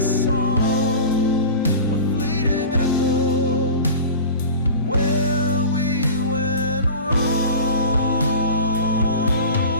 a fleeting echo where we went wrong.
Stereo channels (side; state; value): both; inverted; correlation -0.35